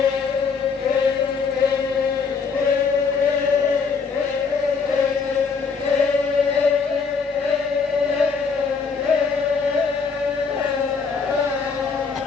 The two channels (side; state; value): right; quieter; 5.3 dB